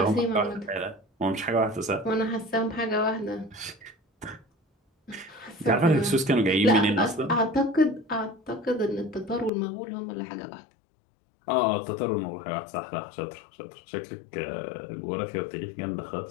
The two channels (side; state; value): right; drops out; at 9.5 s